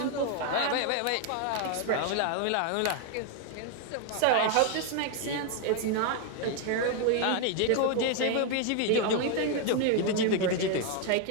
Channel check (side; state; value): both; different; correlation 0.00